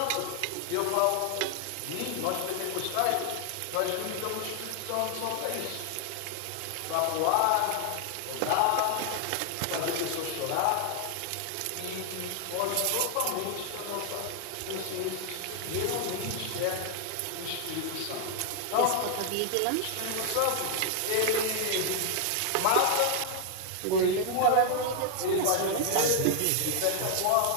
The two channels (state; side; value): different; both; correlation 0.00